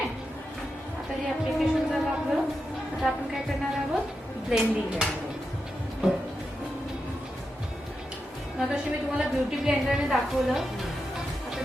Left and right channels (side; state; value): both; normal; correlation 0.88